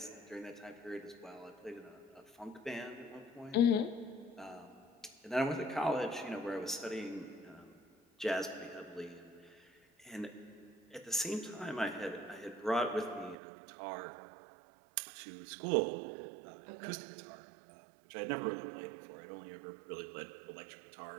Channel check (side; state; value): left; drops out; at 13.4 s